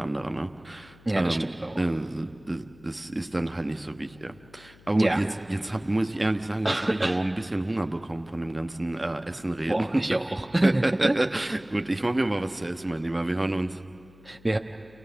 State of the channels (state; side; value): noise; left; hum, 24 dB below the sound